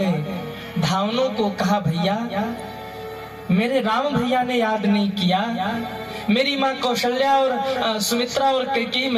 धावनों को कहा, भैया मेरे राम भैया ने याद नहीं किया, मेरी माँ कौशल्या और सुमित्रा और कैकेयी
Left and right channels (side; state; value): both; identical; correlation 1.00